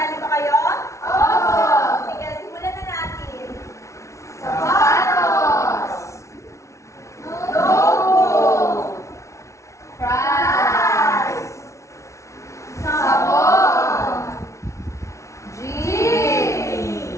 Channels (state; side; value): late; right; 0.14 ms